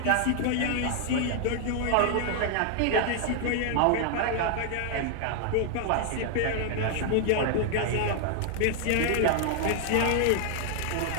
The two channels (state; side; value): different; both; correlation 0.00